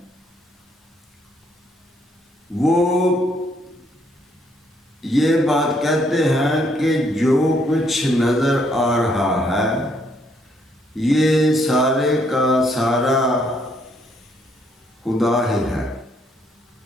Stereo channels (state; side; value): normal; both; correlation 0.70